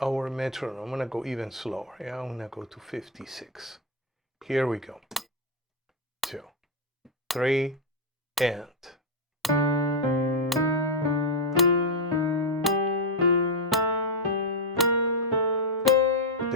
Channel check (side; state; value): both; normal; correlation 0.02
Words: our metronome, I'm going to go even slower. Yeah, I'm going to go to 56. Here we go. 2, 3, and.